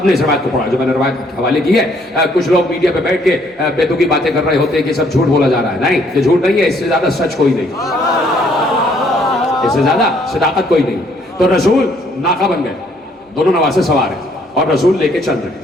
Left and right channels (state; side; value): normal; both; correlation 0.65